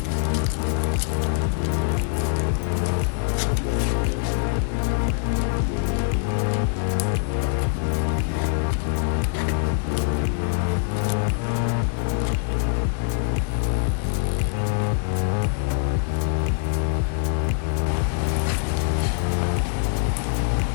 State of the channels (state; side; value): silent; right; 59 dB below the other